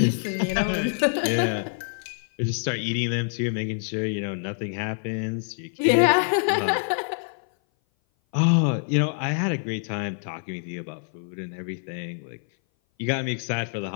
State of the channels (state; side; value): silent; right; 57 dB below the other